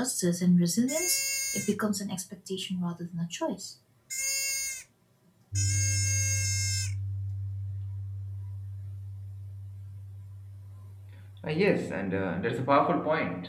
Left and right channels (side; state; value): both; identical; correlation 1.00